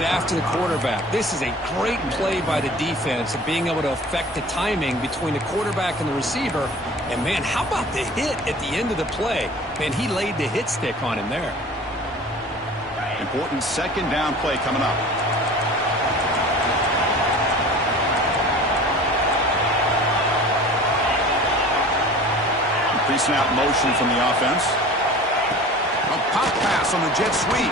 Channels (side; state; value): both; normal; correlation 0.42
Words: after the quarterback. This is a great play by the defense of being able to affect the timing between the quarterback and the receiver. And, man, how about the hit at the end of the play? Man, he laid the hit stick on him there. Important 2nd down play coming up. Pre-snap motion from the offense. A pop pass on the jet